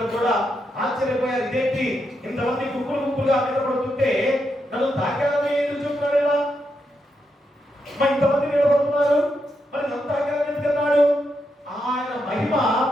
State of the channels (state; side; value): normal; both; correlation 0.83